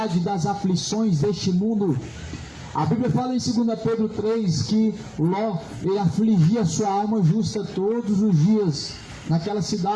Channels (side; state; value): both; identical; correlation 1.00